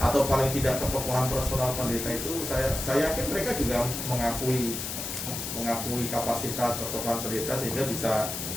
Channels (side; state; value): left; noise; hiss, 5 dB below the sound